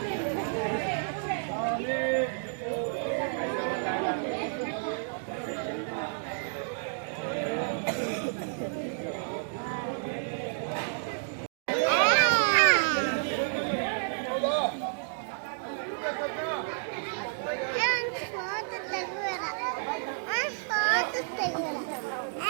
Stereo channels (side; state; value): left; silent; digital silence